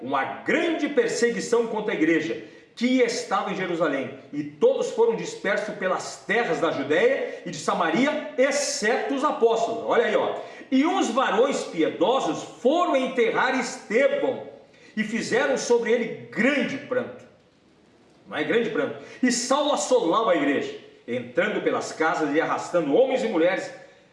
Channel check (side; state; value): both; identical; correlation 1.00